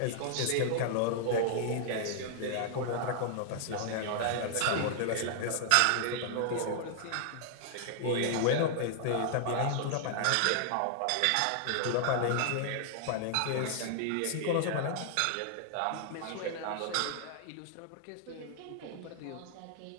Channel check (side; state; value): both; different; correlation -0.01